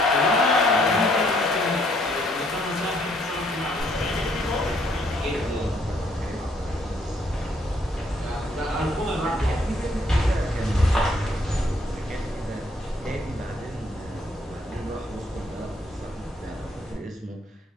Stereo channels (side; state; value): both; normal; correlation 0.67